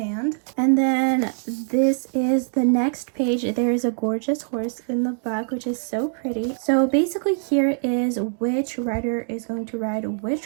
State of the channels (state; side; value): silent; left; digital silence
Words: And then this is the next page. There is a gorgeous horse in the back, which is so pretty. So basically here is which rider is going to ride